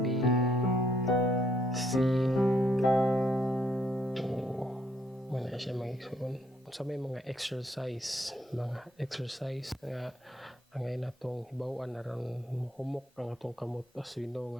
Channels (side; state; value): both; normal; correlation 0.70